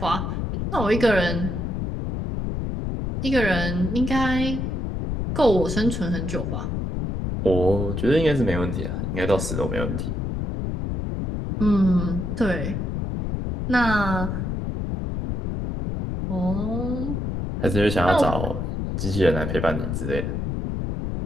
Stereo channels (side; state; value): left; noise; rumble, 2 dB below the sound